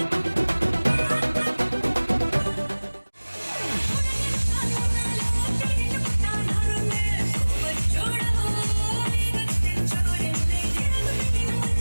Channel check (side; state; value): both; inverted; correlation -1.00